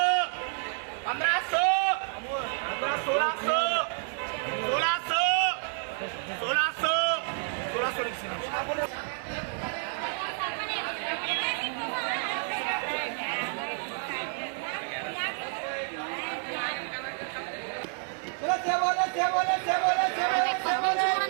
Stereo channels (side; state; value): left; silent; 58 dB below the other